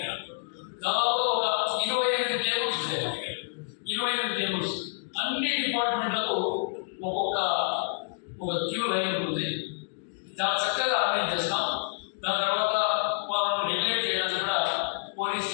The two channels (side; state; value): right; silent; digital silence